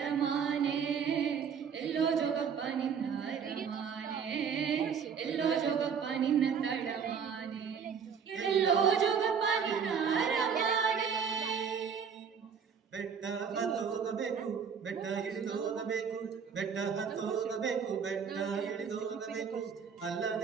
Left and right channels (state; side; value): quieter; left; 6.8 dB